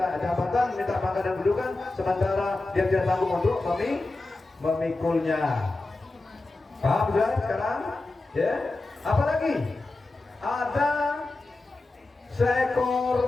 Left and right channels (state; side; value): quieter; right; 3.1 dB